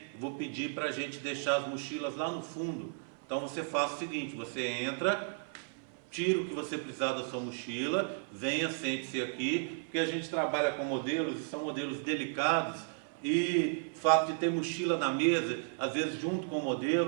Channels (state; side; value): silent; left; 55 dB below the other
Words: eu vou pedir para a gente deixar as mochilas lá no fundo. Então, você faz o seguinte, você entra, tira o que você precisar da sua mochila, venha, sente-se aqui, porque a gente trabalha com modelos, e são modelos delicados, e o fato de ter mochila na mesa, às vezes junto com o